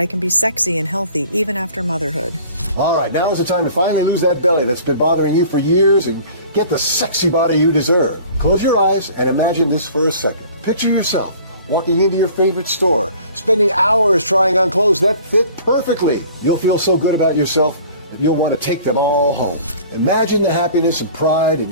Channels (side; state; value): both; inverted; correlation -0.48